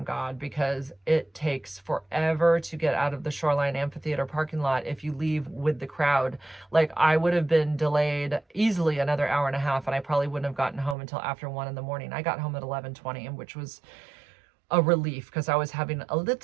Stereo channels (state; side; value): drops out; left; at 11.0 s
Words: God, because it takes forever to get out of the Shoreline Amphitheater parking lot if you leave with the crowd. Like, I would have been delayed easily another hour and a half, and I probably wouldn't have gotten home until after 1 in the morning. I got home at 11:20, which was a relief because I was having a